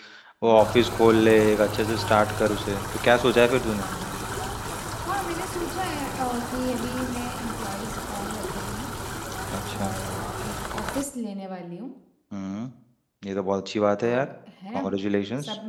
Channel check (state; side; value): identical; both; correlation 1.00